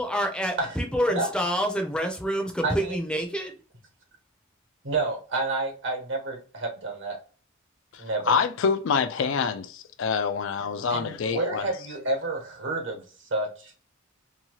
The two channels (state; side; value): normal; both; correlation 0.06